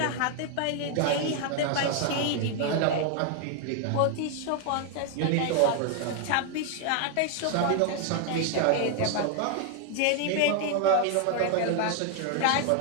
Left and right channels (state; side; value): different; both; correlation 0.00